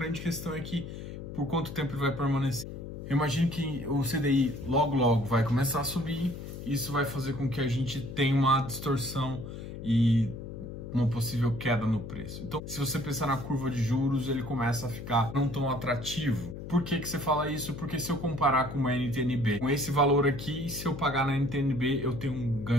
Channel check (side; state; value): left; noise; hum, 9 dB below the sound